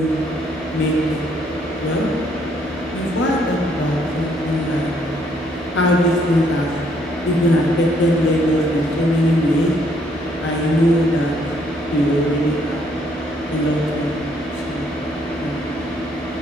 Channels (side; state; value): both; normal; correlation 0.68